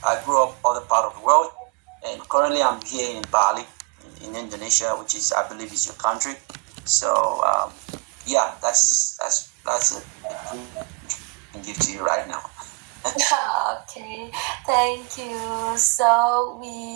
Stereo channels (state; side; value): quieter; left; 30.5 dB